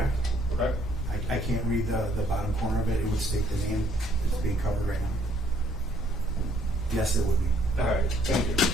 Okay. I can't read the bottom corner of it. It would state the name that's being covered right now. Yes, it would be. All right, thank you.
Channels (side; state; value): both; normal; correlation 0.65